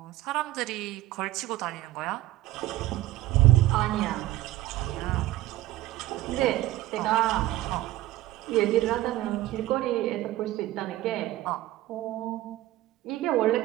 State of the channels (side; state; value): left; quieter; 15.9 dB